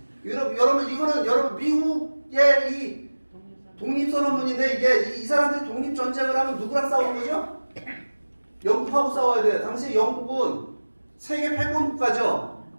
여러분 이거는 여러분 미국의 이 독립선언문인데 이게 이 사람들이 독립전쟁을 하면 누구랑 싸우는 거죠? 영국하고 싸워야 돼요. 당시 영국은 세계 패권 국가죠.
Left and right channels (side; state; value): both; inverted; correlation -1.00